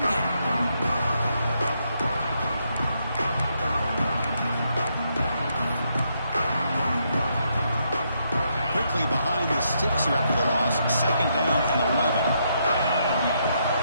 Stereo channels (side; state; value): both; inverted; correlation -0.77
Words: game. Quickly behind the sticks here after the loss. Second down and 11.